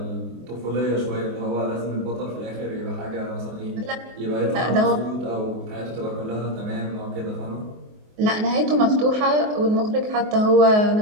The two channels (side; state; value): left; late; 24 ms